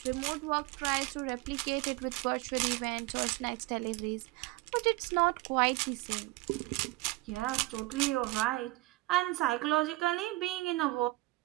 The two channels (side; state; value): left; quieter; 20.9 dB